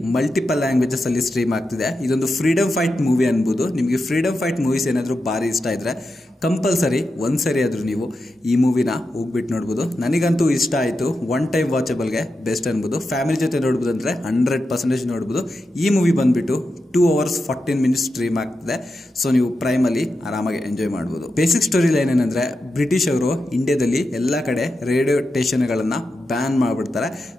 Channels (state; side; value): normal; both; correlation 0.89